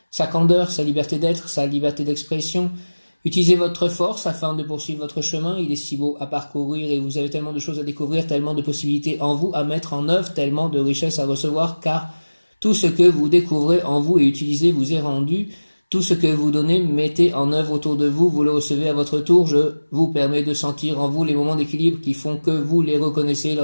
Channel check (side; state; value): both; inverted; correlation -1.00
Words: sa candeur, sa liberté d'être, sa liberté d'expression. Utilisez votre force afin de poursuivre votre chemin. Il est si beau à parcourir et vous avez tellement de choses à découvrir, tellement de possibilités en vous à mettre en œuvre, tellement de richesses à recevoir, car tout ce que vous découvrez en vous et utilisez vous est rendu. Tout ce que vous donnez, mettez en œuvre autour de vous, vous le recevez à votre tour. Je vous permets de sentir en vous les moments d'équilibre qui font que vous les reconnaissez